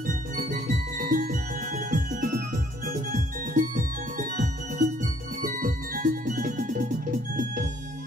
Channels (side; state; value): both; normal; correlation 0.63